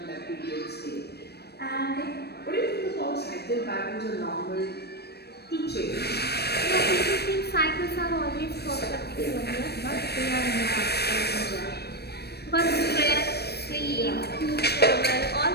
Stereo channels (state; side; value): late; right; 0.47 ms